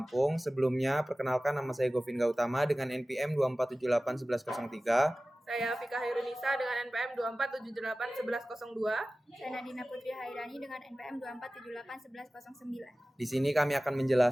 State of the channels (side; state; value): both; normal; correlation 0.96